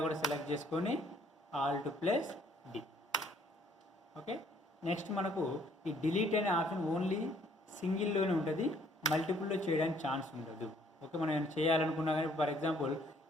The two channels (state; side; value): normal; both; correlation 0.63